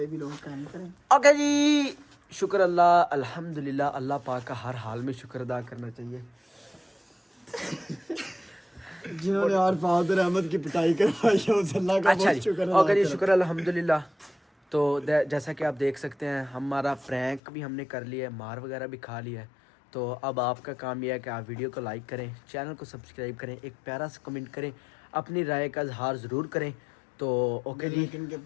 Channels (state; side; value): drops out; right; at 17.4 s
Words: भी लोग काम करें। ओके जी, शुक्र अल्लाह, अल्हम्दुलिल्लाह, अल्लाह पाक का हर हाल में शुक्र अदा करना चाहिए। जिन्होंने यार फादर अहमद की पिटाई करवाई है उस अल्लाह का अच्छा बहुत जी, शुक्र ओके जी, शुक्र अल्हम्दुलिल्लाह। तो जैसा कि आप देख सकते हैं, हमारा प्रैंक भी हमने कर लिया है, मार वगैरह भी खा लिया है। तो अब आपका काम यह है कि आप वीडियो को लाइक करें, चैनल को सब्सक्राइब करें, एक प्यारा सा कमेंट करें, अपनी राय का इजहार ज़रूर करें। तो ओके जी,